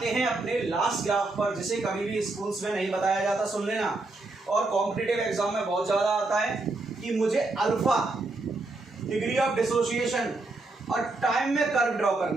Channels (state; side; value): quieter; left; 3.2 dB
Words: हैं अपने लास्ट ग्राफ पर, जिसे कभी भी स्कूल्स में नहीं बताया जाता, सुन लेना, और कॉम्पिटिटिव एग्जाम में बहुत ज्यादा आता है कि मुझे अल्फा डिग्री ऑफ डिसोसिएशन और टाइम में कर्व ड्रॉ